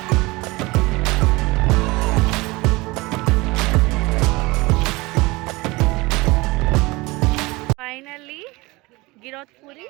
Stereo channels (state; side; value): quieter; left; 22.8 dB